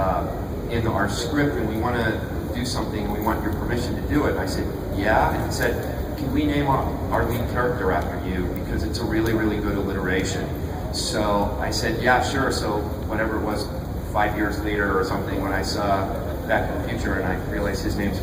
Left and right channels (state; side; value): identical; both; correlation 1.00